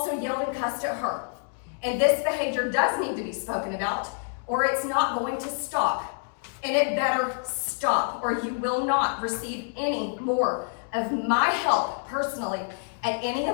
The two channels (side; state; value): right; silent; digital silence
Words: yelled and cussed at her. And this behavior does need to be spoken about, or it's not going to stop. And it better stop, or you will not receive any more of my help personally at any